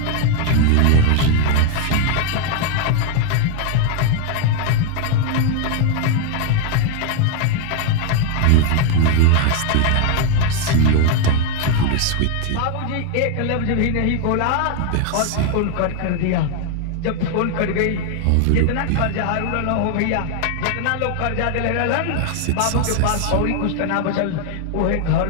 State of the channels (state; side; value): different; both; correlation 0.01